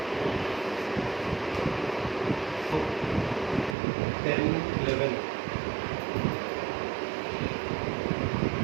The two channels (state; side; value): drops out; left; at 3.8 s